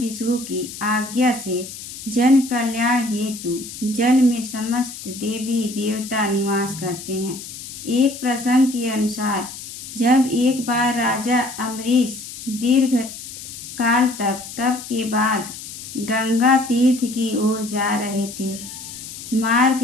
की आज्ञा से जन कल्याण हेतु जल में समस्त देवी देवता निवास करते हैं। एक प्रसंग के अनुसार जब एक बार राजा अम्बरीश दीर्घ काल तक तप के बाद गंगा तीर्थ की ओर जा रहे थे, मार्ग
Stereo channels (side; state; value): left; noise; hiss, 12 dB below the sound